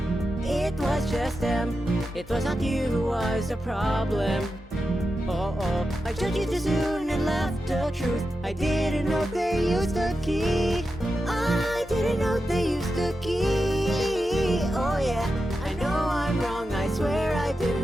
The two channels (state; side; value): normal; both; correlation 0.90